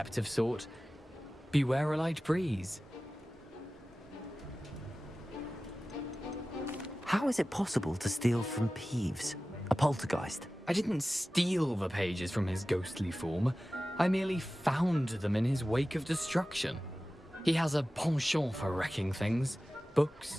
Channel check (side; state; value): both; normal; correlation 0.96